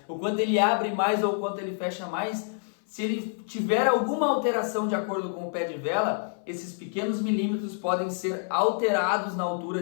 O quanto ele abre mais ou o quanto ele fecha mais. Se ele tiver alguma alteração de acordo com o pé de vela, esses pequenos milímetros podem ser alterados na altura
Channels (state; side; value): silent; right; 57 dB below the other